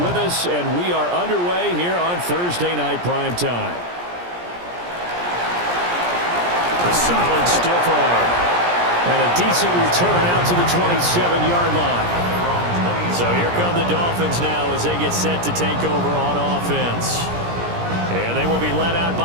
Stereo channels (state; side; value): late; left; 17 ms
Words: with us, and we are underway here on Thursday Night Prime Time. A solid stiff arm. And a decent return out to the 27-yard line. So here come the Dolphins now as they get set to take over on offense. And they will be led out